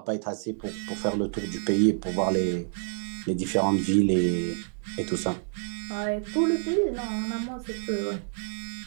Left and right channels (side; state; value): left; silent; digital silence